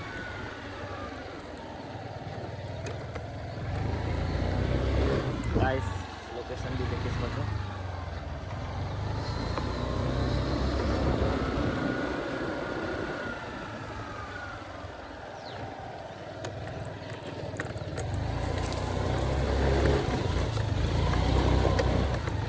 गाइस लोकेशन भी देखिए इसको तो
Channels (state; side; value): identical; both; correlation 1.00